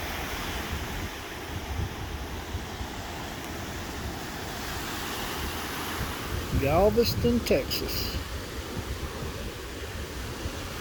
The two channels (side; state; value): both; identical; correlation 1.00